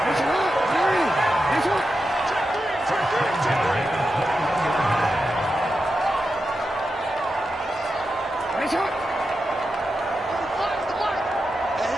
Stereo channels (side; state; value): both; normal; correlation 0.89